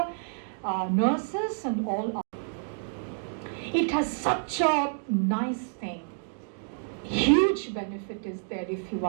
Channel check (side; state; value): left; silent; digital silence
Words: nurses and all. It has such a nice thing. Huge benefit is there if you